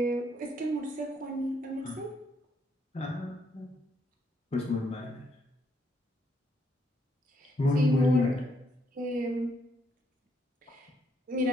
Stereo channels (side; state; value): both; normal; correlation 0.73